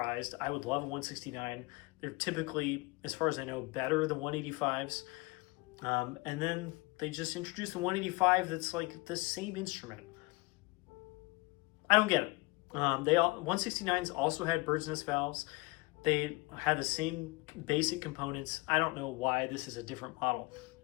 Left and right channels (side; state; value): right; quieter; 24.7 dB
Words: I would love a 169. They're typically, as far as I know, better than 185s. And then they just introduced the 185 that's like the same instrument. I don't get it. 169s also had bird's nest valves. They had the same basic components. I don't know why this is a different model.